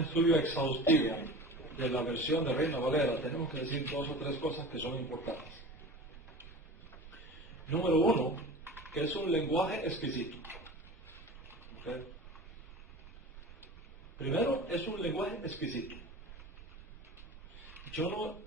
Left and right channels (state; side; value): normal; both; correlation 0.36